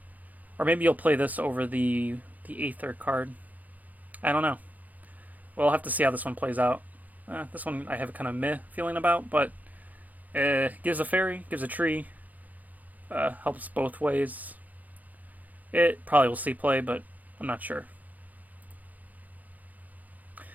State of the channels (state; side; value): late; left; 0.079 ms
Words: Or maybe you'll play this over the Aether card. I don't know. We'll have to see how this one plays out. This one I have a kind of meh feeling about, but gives a fairy, gives a tree, helps both ways. It probably will see play, but I'm not sure.